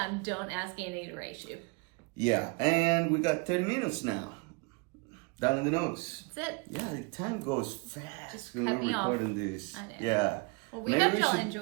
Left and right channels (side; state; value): left; quieter; 29.4 dB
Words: don't ask Annie to race you. Yeah, and we got 30 minutes now. Down in the notes. That's it. Yeah, the time goes fast Just when cut we're me off. recording this. I know. Yeah. Well, we hope y'all